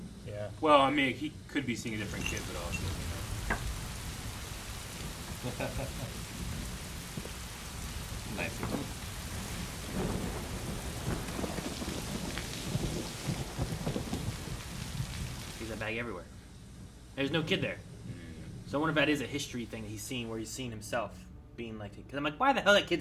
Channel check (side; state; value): both; identical; correlation 1.00